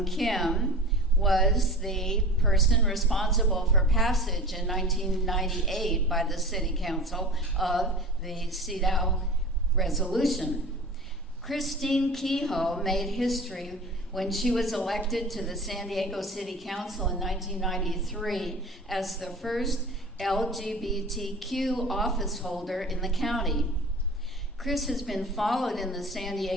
Kim, was the person responsible for passage in 1998 by the City Council of the CEDAW resolution. Christine Kehoe made history when she was elected to the San Diego City Council in 1993 as the first LGBTQ office holder in the county. Chris has been followed in the San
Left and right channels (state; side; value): normal; both; correlation 0.36